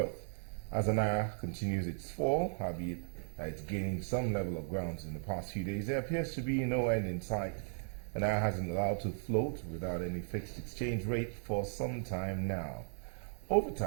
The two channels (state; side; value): silent; left; digital silence